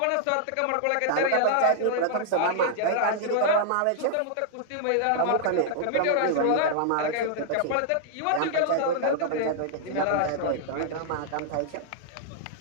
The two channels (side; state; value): both; different; correlation -0.01